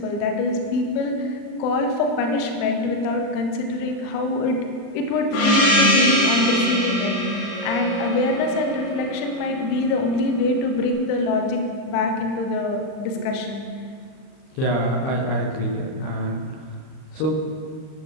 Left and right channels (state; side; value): late; right; 39 ms